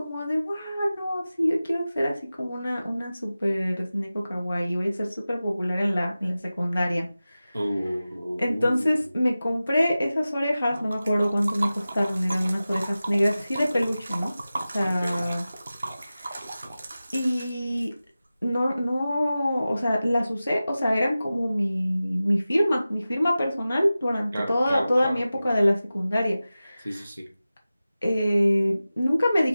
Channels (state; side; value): inverted; both; correlation -0.95